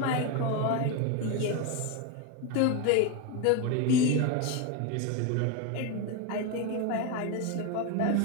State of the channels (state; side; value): different; both; correlation 0.03